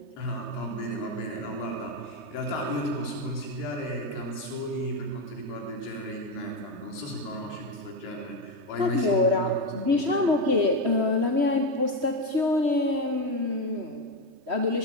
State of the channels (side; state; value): left; late; 3.1 ms